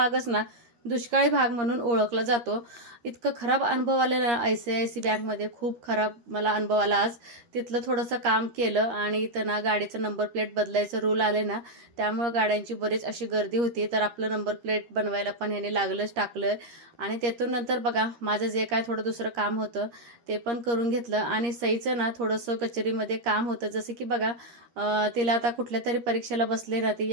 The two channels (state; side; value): late; left; 13 ms